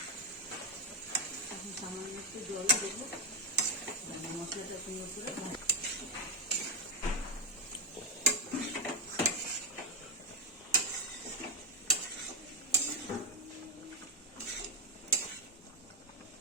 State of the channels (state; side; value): normal; both; correlation 0.02